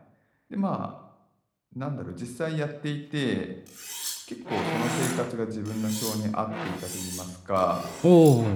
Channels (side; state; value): both; identical; correlation 1.00